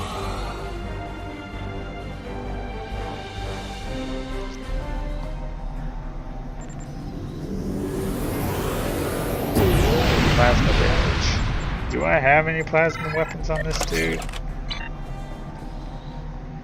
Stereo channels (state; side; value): identical; both; correlation 1.00